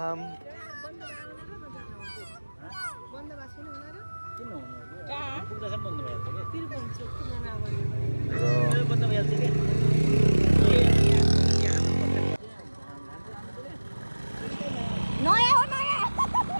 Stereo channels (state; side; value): inverted; both; correlation -1.00